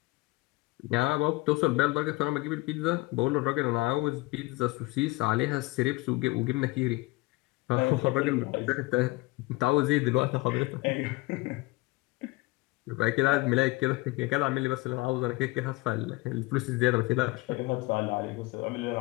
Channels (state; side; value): quieter; right; 22.2 dB